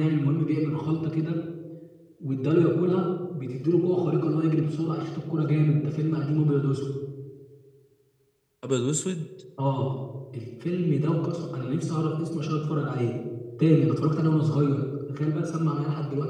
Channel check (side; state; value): both; identical; correlation 1.00